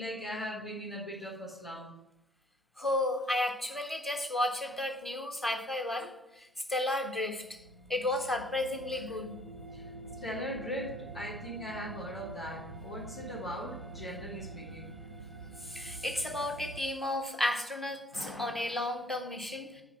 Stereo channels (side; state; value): both; normal; correlation 0.57